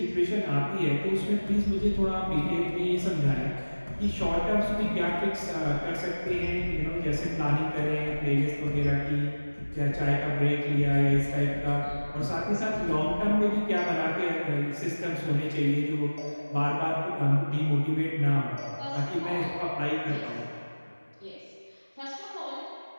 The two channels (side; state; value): both; inverted; correlation -1.00